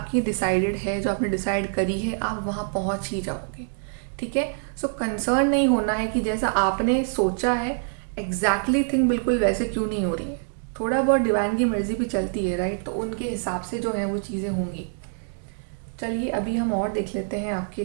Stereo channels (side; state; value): left; silent; digital silence